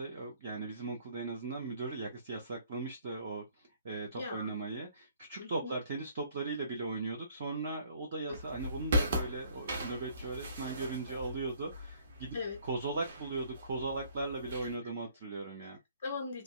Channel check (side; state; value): both; inverted; correlation -0.60